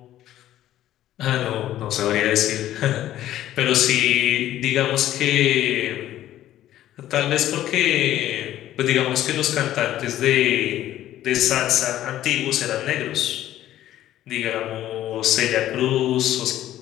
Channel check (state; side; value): quieter; right; 13.0 dB